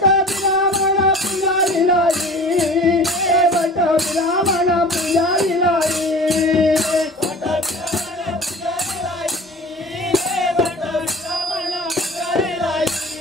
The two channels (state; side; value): normal; both; correlation 0.40